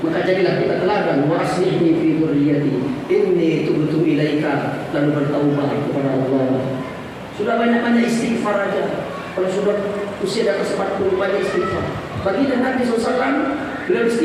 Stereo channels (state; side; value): identical; both; correlation 1.00